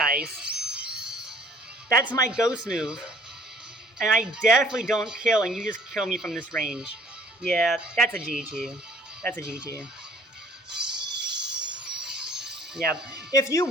That's my ghost move, and I definitely don't kill, and you just kill me from this range. Yeah, that's a GG. Yeah, if you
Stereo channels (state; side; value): normal; both; correlation 0.55